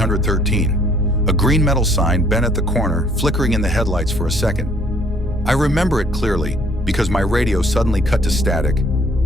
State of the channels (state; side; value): normal; both; correlation 0.61